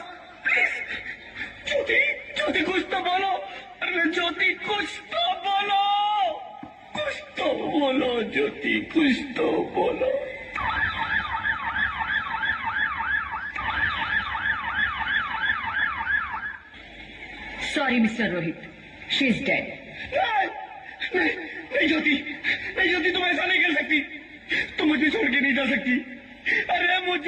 please. Jyoti कुछ तो बोलो। अरे ज्योति कुछ तो बोलो, कुछ तो बोलो ज्योति, कुछ तो बोलो। Sorry mister Rohit, she is dead. नहीं ज्योति, नहीं ज्योति, तुम ऐसा नहीं कर सकती, तुम मुझे छोड़ के नहीं जा सकती। अरे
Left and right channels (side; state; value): both; identical; correlation 1.00